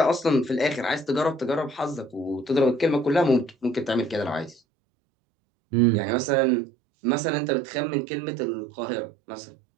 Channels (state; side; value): drops out; left; at 4.6 s